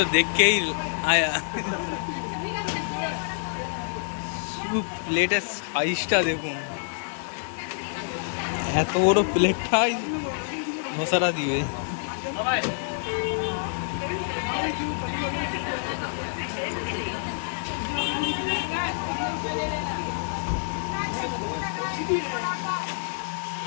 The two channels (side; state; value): right; silent; digital silence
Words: देख के ही आया। প্লেটের সাইজটা দেখুন, এত বড় প্লেটটাই ধোসাটা দিবে।